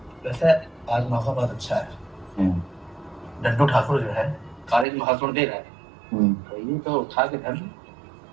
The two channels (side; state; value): left; drops out; at 4.9 s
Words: वैसे आज मौका बहुत अच्छा है। डड्डू ठाकुर जो है कॉलेज में भाषण दे रहा है, तो ये तो उठा के घर में